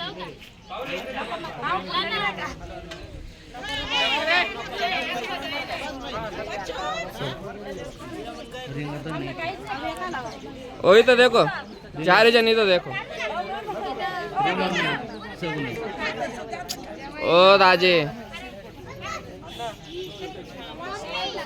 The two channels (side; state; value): both; identical; correlation 1.00